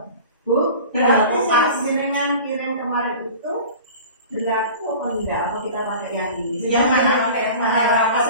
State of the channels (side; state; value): both; inverted; correlation -0.39